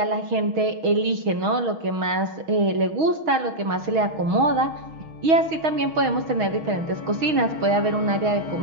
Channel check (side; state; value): left; late; 6.3 ms